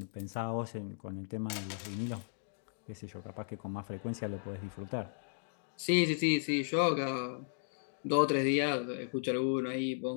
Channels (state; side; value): silent; right; digital silence